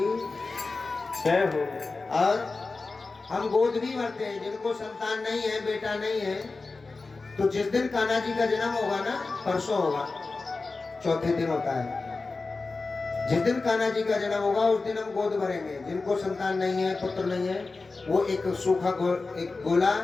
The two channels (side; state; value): right; quieter; 3.8 dB